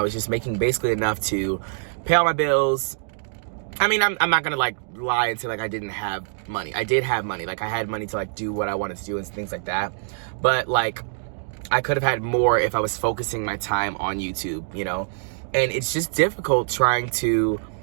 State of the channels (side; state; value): left; silent; digital silence